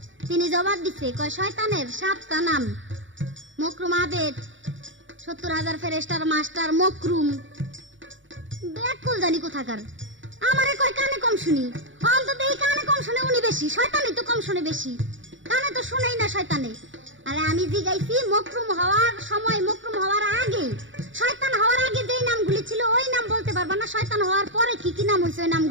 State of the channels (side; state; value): left; late; 0.56 ms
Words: তিনি জবাব দিচ্ছে কয় শয়তানের 7টা নাম। মকরুম আবেদ, 70,000 ফেরেশতার মাস্টার মকরুম। ব্যাককল জানি কোথাকার। আমারে কয় কানে কম শুনি, অন্তত এই কানে কম শুনে উনি বেশি, শয়তানি তো কম শুনে বেশি, কানে তো শুনেই না শয়তানে। আরে আমি জিগাইছি মকরুম হওয়ার সময়, মকরুম হওয়ার আগে, শয়তান হওয়ার আগে যেই নামগুলি ছিল ওই নাম বলতে পারবা না, শয়তান হওয়ার পরে কি কি নাম হয়েছে ওই